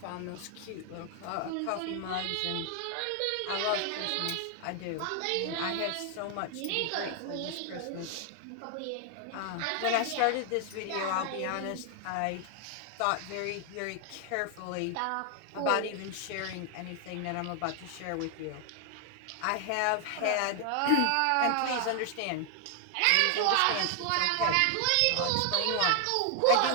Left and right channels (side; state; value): both; different; correlation 0.00